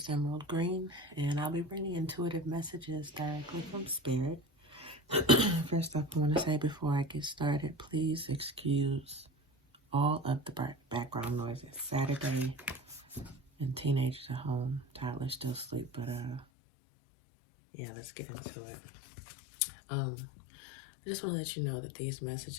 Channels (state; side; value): drops out; right; at 16.4 s